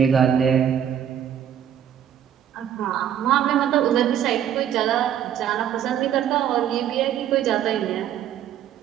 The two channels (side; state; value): left; quieter; 9.7 dB